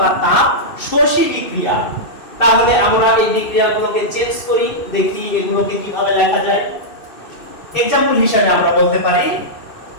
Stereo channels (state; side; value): late; right; 2.6 ms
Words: তাপ শোষী বিক্রিয়া। তাহলে আমরা এই বিক্রিয়াগুলোকে চেঞ্জ করি, দেখি এগুলোকে কিভাবে লেখা যায়। এক্সাম্পল হিসেবে আমরা বলতে পারি,